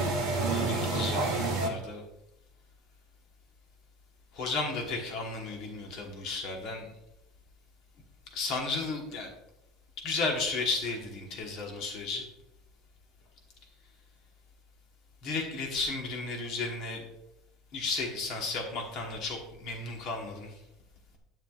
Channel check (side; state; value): both; normal; correlation 0.33